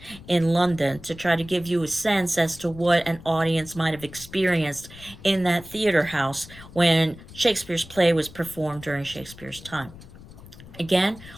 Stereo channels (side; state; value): left; noise; rumble, 18 dB below the sound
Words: in London to try to give you a sense as to what an audience might have experienced in that theater house when Shakespeare's play was performed during Shakespeare's time. Again,